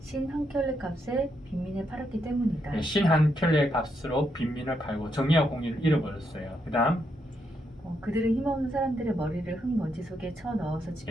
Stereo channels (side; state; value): both; normal; correlation 0.79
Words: 신 한 켤레 값에 빈민을 팔았기 때문이다. 신 한 켤레 값으로 빈민을 팔고 정의와 공의를 잃어버렸어요. 그 다음 그들은 힘없는 사람들의 머리를 흙먼지 속에 쳐넣어서